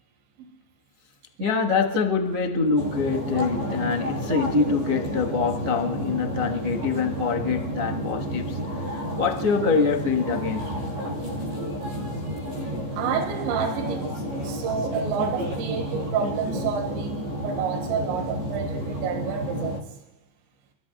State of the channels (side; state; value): left; late; 15 ms